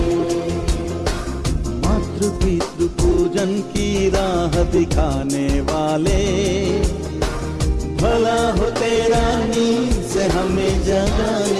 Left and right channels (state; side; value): identical; both; correlation 1.00